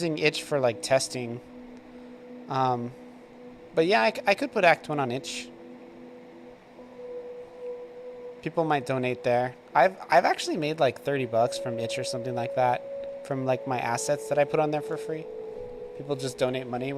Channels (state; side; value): identical; both; correlation 1.00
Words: itch for like testing. But yeah, I could put Act 1 on itch. People might donate there. I've actually made like $30 from itch or something like that, from like my assets that I put on there for free. People just donate money